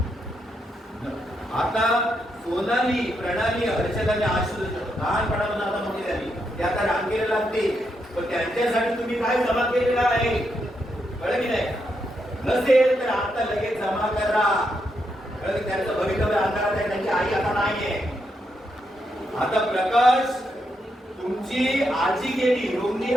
आता सोनाली, प्रणाली, हर्षदाने आशुष लहानपणापासून आता मोठी झाली, ते आता रांगेला लागते, पण त्यांच्यासाठी तुम्ही काय जमा केलेलं आहे कळलं की नाही? नसेल तर आता लगेच जमा करा. त्यांचं भवितव्य अंधारात आहे, त्यांची आई आता नाहीये. आता प्रकाश, तुमची आजी गेली, रोगली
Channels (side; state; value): both; normal; correlation 0.81